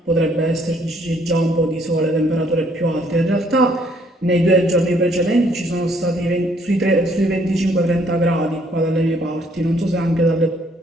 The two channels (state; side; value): normal; both; correlation 0.65